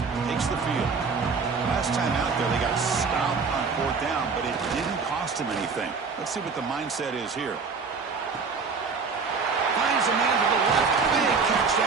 takes the field. Last time out there, they got stopped on fourth down, but it didn't cost him anything. Let's see what the mindset is here. Finds a man to the left. Big catch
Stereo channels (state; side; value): quieter; left; 5.0 dB